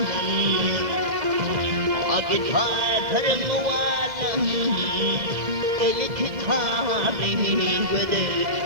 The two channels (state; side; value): late; left; 1.7 ms